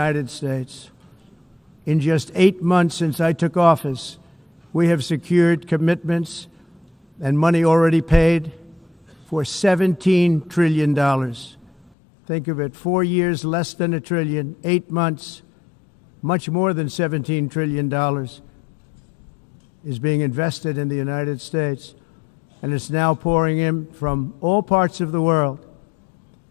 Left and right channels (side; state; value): right; drops out; at 11.9 s